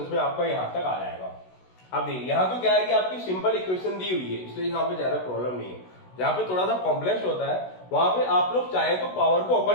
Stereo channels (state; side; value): late; right; 16 ms